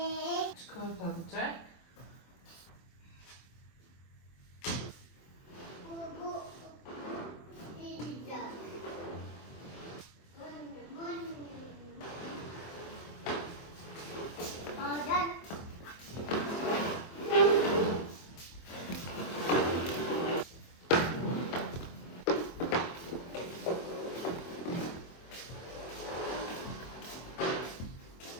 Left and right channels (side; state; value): right; late; 24 ms